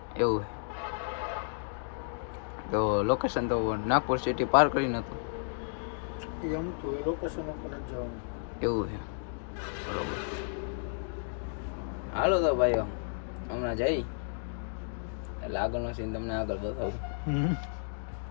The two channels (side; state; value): right; silent; digital silence